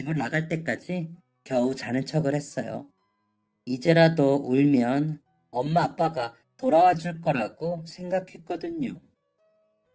나갈 때까지 겨우 자는 척을 했어요. 이제라도 울면 엄마 아빠가 돌아와 줄 거라고 생각했거든요.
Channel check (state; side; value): identical; both; correlation 1.00